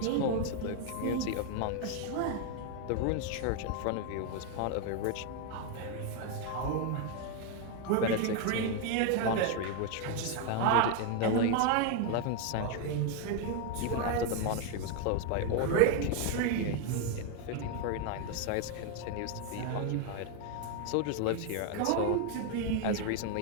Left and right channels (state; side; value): different; both; correlation 0.01